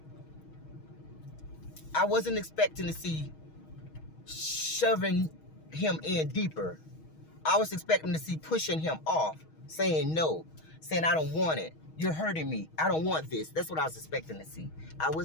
I wasn't expecting to see shoving him in deeper. I was expecting to see pushing him off, saying no, saying I don't want it. You're hurting me. I don't want this. That's what I was expecting to see. I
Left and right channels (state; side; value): late; right; 6.3 ms